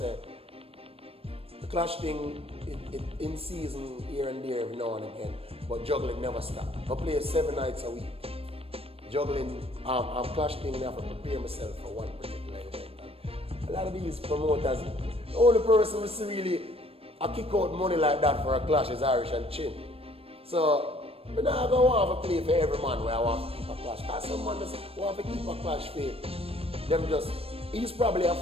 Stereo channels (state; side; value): late; left; 0.28 ms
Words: the clash thing, it in season here and there every now and again, but juggling never stop. I play 7 nights a week. Juggling, clash thing, I have to prepare myself for one particular event. And a lot of these promoters, the only person who really kick out money like that for a clash is Irishandchin. So, I'm not going to want to play for every man where I want to keep a clash. Because some man just want to keep a clash for them just, he's probably a